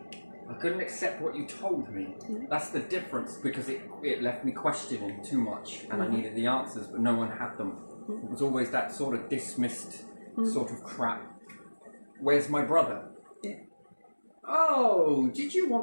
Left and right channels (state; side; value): inverted; both; correlation -1.00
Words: I couldn't accept what you told me. That's the difference, because it left me questioning too much and I needed the answers, but no one had them. It was always that sort of dismissed sort of crap. Where's my brother? Yeah. Oh, did you